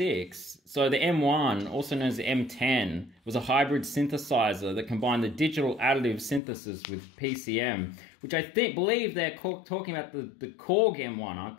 So the M1, also known as the M10, was a hybrid synthesizer that combined the digital additive synthesis with PCM, which I believe they're talking about the Korg M1, aren't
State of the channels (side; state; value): right; drops out; at 6.4 s